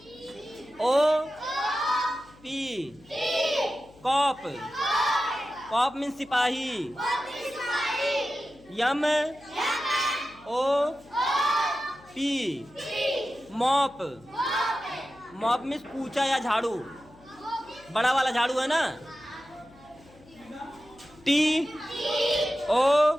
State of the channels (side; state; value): left; noise; hum, 26 dB below the sound